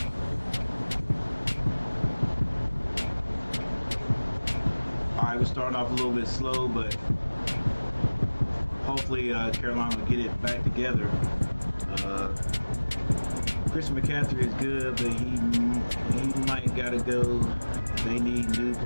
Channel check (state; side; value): inverted; both; correlation -1.00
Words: Alright, we're starting off a little bit slow, but hopefully Carolina will get it back together. Christian McCaffrey is good, but he might gotta go. They need new